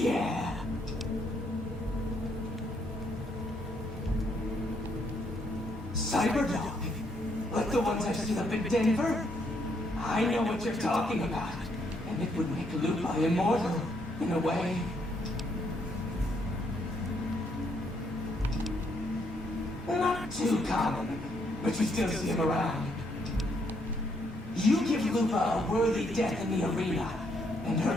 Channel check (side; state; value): both; normal; correlation 0.73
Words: Cyberdog? Like the ones I've seen up in Denver? I know what you're talking about. And it would make Lupa immortal, in a way. Not too common, but you still see him around. You give Lupa a worthy death in the arena, and